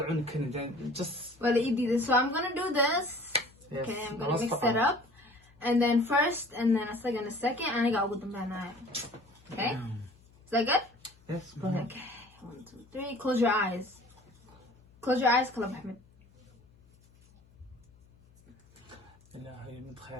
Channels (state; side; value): noise; left; hum, 28 dB below the sound